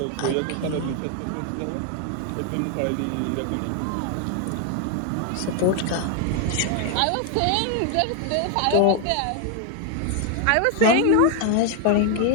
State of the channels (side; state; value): both; different; correlation 0.01